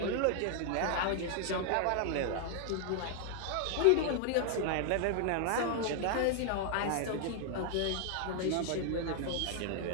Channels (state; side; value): different; both; correlation 0.00